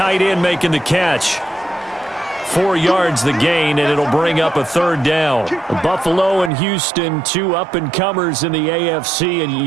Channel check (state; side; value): drops out; left; at 6.5 s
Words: end, making the catch. 4 yards the gain, and it'll bring up a 3rd down. Buffalo and Houston, 2 up-and-comers in the AFC,